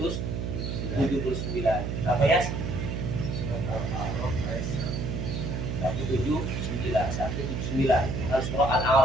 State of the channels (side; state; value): right; noise; hum, 3 dB below the sound